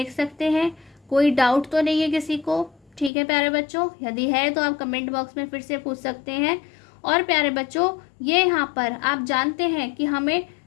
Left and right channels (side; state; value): right; drops out; at 3.1 s